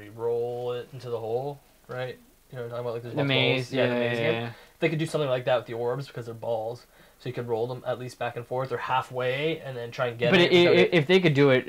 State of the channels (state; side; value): identical; both; correlation 1.00